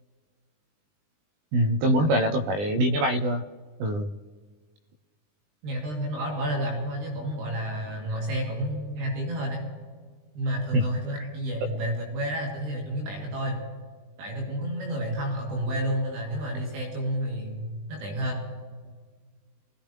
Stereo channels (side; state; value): left; late; 20 ms